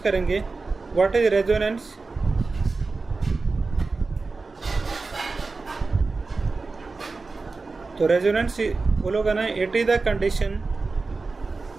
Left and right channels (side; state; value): left; quieter; 4.0 dB